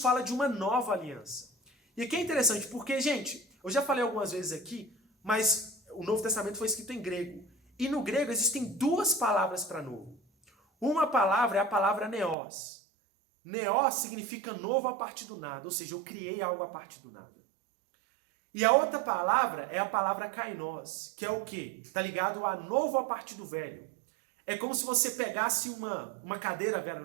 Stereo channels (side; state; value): left; drops out; at 12.4 s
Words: de uma nova aliança. E aqui é interessante porque, gente, eu já falei algumas vezes aqui, mas o Novo Testamento foi escrito em grego. E no grego existem duas palavras para novo. Uma palavra é a palavra neos. Neos significa novo a partir do nada, ou seja, eu criei algo a partir do nada. E a outra palavra é a palavra kainos, que é o quê? Está ligado a novo a partir do velho. É como se você pegasse uma cadeira velha